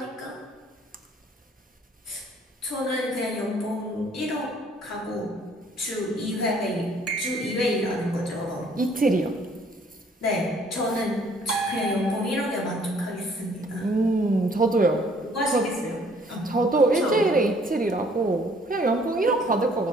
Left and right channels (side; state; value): both; normal; correlation 0.60